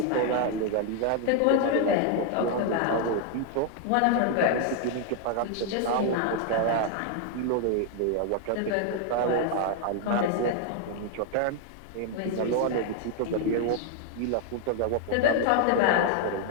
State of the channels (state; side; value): different; both; correlation 0.00